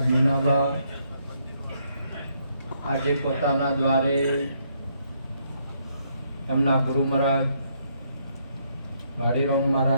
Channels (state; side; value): inverted; both; correlation -0.73